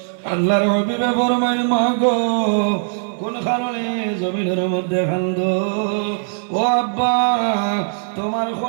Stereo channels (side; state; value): left; silent; 65 dB below the other